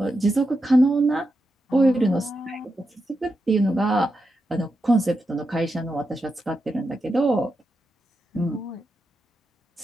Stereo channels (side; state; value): both; normal; correlation 0.87